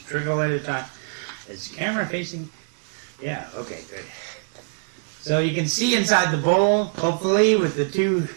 trickle at a time. Is the camera facing? Yeah, okay, good. So you can see inside the bowl, hopefully, with the two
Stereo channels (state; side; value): silent; left; digital silence